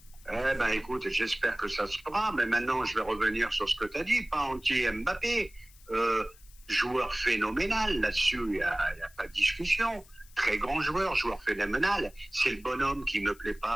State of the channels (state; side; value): noise; left; hiss, 25 dB below the sound